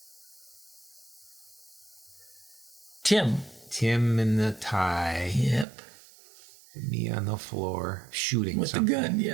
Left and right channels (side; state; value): left; drops out; at 5.7 s